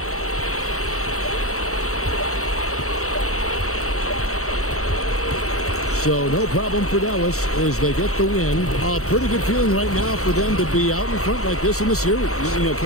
So no problem for Dallas as they get the win. A pretty good feeling right now for them to be out in front like this in the series. You know,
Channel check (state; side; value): late; right; 0.64 ms